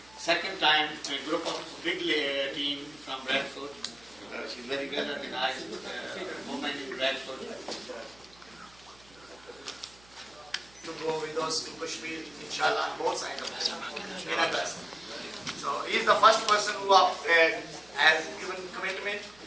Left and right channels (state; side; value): noise; right; hum, 26 dB below the sound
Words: second time a group of big team from Bradford. She's very well organized woman in Bradford. To go with us to Kashmir, inshallah, on both sides of the in August. So he is the first person who has given commitment,